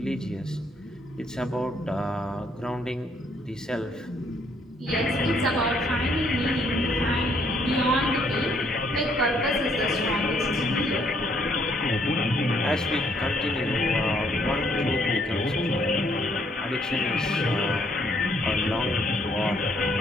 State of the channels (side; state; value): both; normal; correlation 0.68